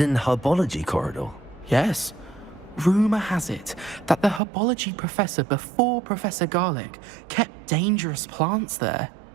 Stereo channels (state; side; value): drops out; left; at 4.4 s